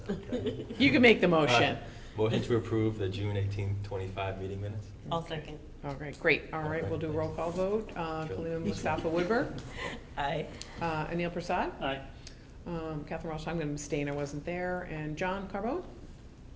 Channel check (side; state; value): both; identical; correlation 1.00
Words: okay? You can make the motion. Motion to approve the June 18th, 25 meeting minutes? I'll second. All right, great. All right, we'll do a roll call vote. Khalil Mustafa Woodburn, Aye. Anil Prasad, Aye. Catherine Ross, I'm going to abstain, I wasn't there, and John Carbone?